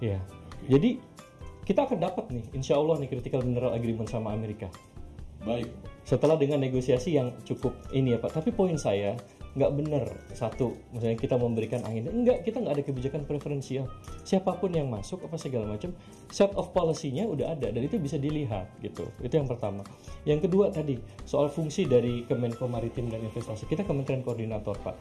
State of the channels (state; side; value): identical; both; correlation 1.00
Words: jadi kita akan dapat nih, insya Allah nih Critical Mineral Agreement sama Amerika. Baik. Setelah dengan negosiasi yang cukup ini ya Pak. Tapi poin saya nggak benar satu, misalnya kita memberikan angin. Enggak, kita nggak ada kebijakan preferensial. Siapapun yang masuk apa segala macam, set of policy-nya udah ada dan itu bisa dilihat gitu. Itu yang pertama. Yang kedua tadi soal fungsi dari Kemenko Maritim dan Investasi. Kita Kementerian Koordinator